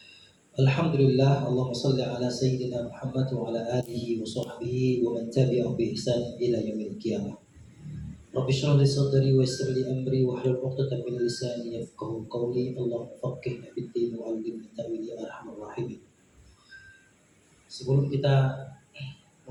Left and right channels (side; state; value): both; identical; correlation 1.00